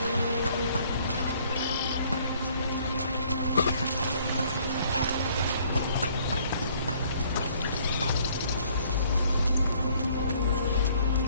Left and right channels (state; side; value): inverted; both; correlation -0.61